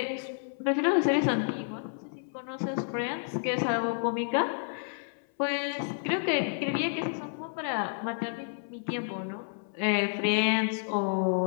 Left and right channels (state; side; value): silent; right; 58 dB below the other